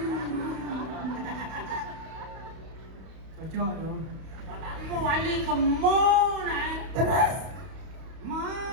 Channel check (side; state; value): left; late; 31 ms